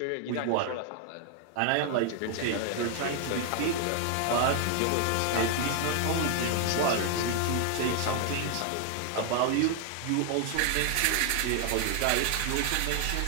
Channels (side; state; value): both; different; correlation 0.00